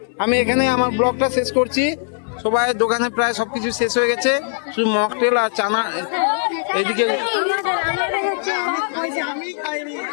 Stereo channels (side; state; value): right; silent; 60 dB below the other